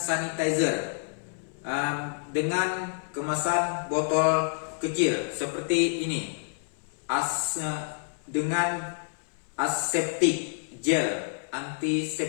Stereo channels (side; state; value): right; silent; 58 dB below the other